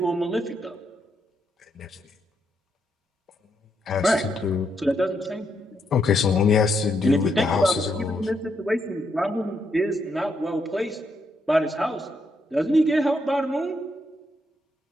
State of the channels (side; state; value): both; normal; correlation 0.78